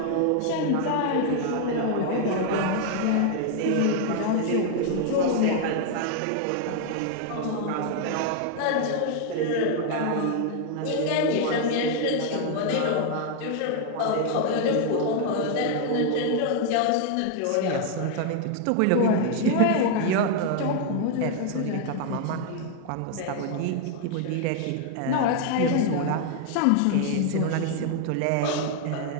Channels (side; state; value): both; different; correlation 0.00